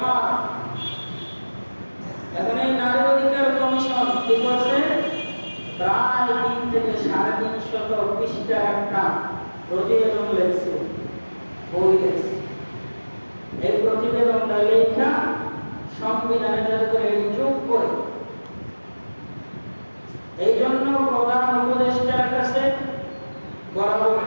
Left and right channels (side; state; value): both; inverted; correlation -1.00